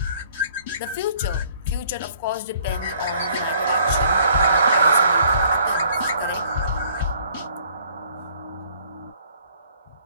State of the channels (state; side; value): inverted; both; correlation -0.59